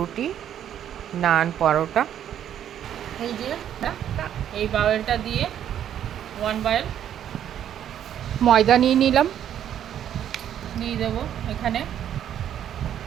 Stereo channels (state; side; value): quieter; left; 10.2 dB